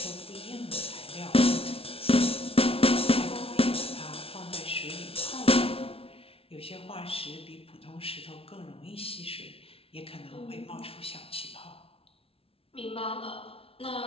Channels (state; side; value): late; right; 0.27 ms